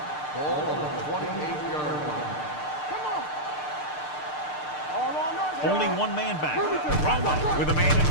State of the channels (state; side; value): late; right; 6.7 ms